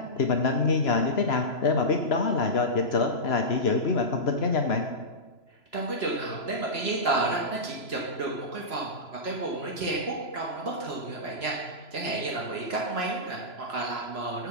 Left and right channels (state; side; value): late; right; 3.0 ms